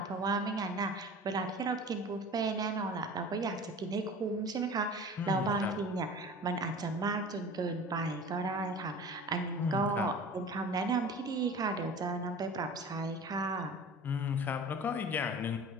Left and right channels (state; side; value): normal; both; correlation 0.40